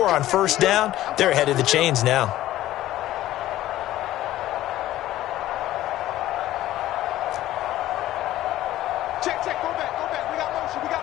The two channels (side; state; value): right; quieter; 14.5 dB